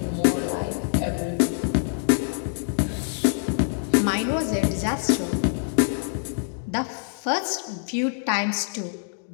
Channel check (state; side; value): silent; right; digital silence